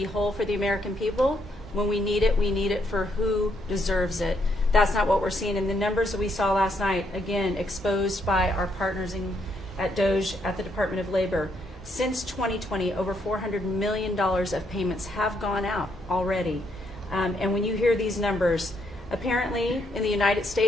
whole for the American people. When we need it for who deserves it. That's not what we're seeing in the numbers that we saw last night, again, exposed by our partners at DOJ at the Department of Labor. Since 2020, over $400 million of payments have gone out already. And when you hear these numbers, apparently in the United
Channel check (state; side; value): normal; both; correlation 0.75